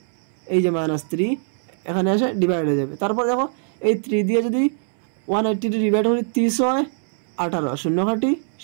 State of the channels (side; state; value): left; silent; 64 dB below the other